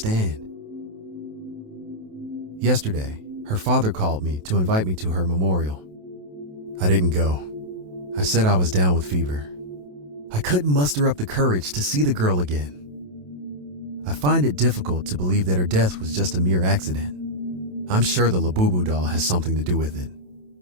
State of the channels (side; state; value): left; late; 27 ms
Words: Yesterday, her father called me to invite me to her memorial. I didn't go. I said I was down with fever. I couldn't muster up the courage to see the girl again. I find it difficult to believe that her death was just a mere accident. I'm sure the Labubu doll has something to do with it.